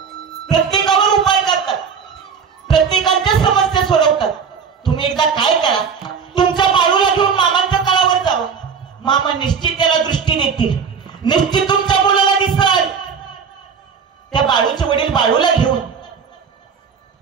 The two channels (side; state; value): left; quieter; 6.4 dB